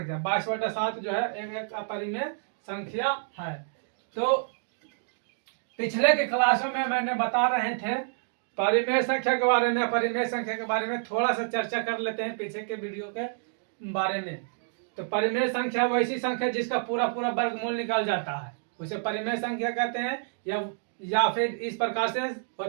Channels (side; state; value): left; silent; digital silence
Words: 22/7 जो है एक अपरिमेय संख्या है। तो पिछले के क्लासों में मैंने बता रहे थे परिमेय संख्या के बारे में, अपरिमेय संख्या के बारे में थोड़ा सा चर्चा कर लेते हैं पीछे के वीडियो के बारे में। तो परिमेय संख्या वैसी संख्या जिसका पूरा पूरा वर्गमूल निकल जाता है, उसे परिमेय संख्या कहते हैं। या फिर इस प्रकार से